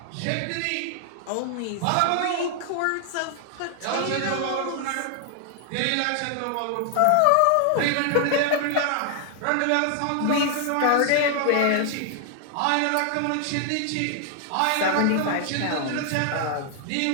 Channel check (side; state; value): both; different; correlation 0.00